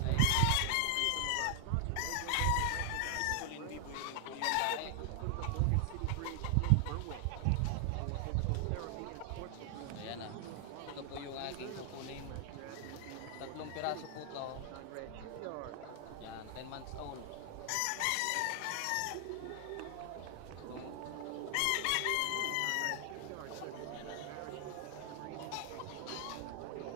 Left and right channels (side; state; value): both; different; correlation 0.00